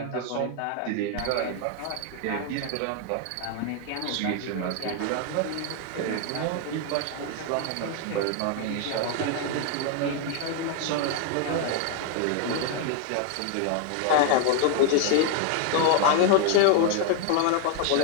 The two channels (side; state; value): both; different; correlation 0.00